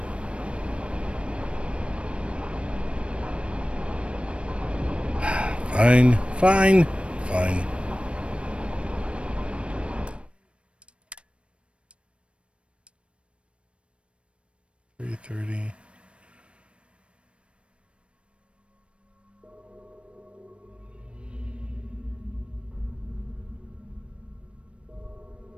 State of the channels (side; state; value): left; late; 0.059 ms